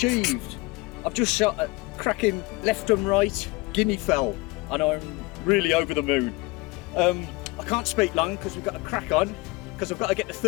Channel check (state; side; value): quieter; right; 24.0 dB